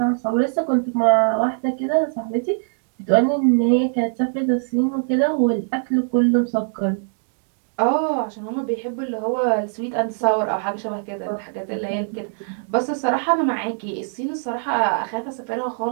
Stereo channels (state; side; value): silent; left; digital silence